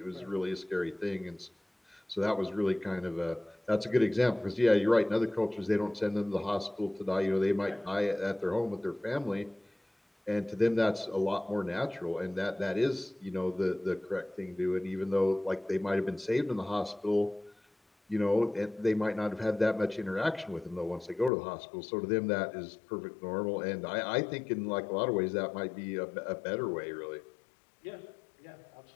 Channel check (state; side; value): drops out; right; at 21.3 s